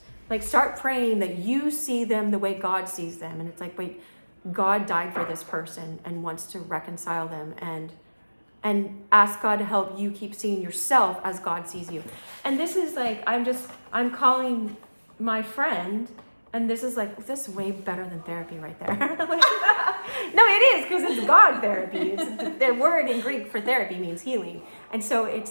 Like, start praying that you see them the way God sees them. And it's like, wait, God died for this person and wants to reconcile them, and ask God to help you keep seeing yourself as God sees you. And this is like, I'm calling my friend, and this is like, this is way better than therapy right there. No, it is, because it's God therapy. It's the word in Greek for therapy means healing. And so it's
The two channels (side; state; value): both; inverted; correlation -1.00